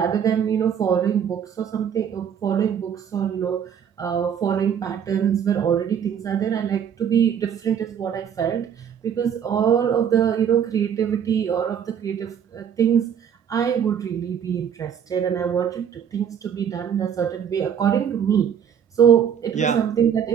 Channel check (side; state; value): left; quieter; 8.2 dB